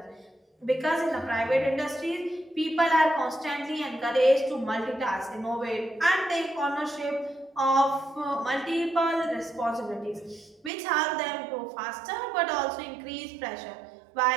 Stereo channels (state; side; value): drops out; left; at 10.7 s